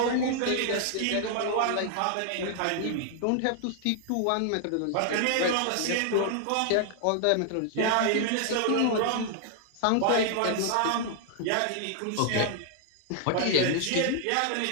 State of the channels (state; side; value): different; both; correlation 0.00